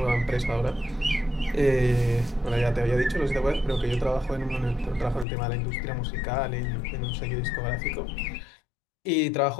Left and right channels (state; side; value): drops out; right; at 5.2 s